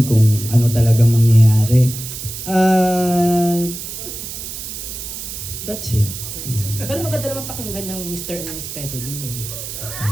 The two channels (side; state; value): right; noise; hiss, 8 dB below the sound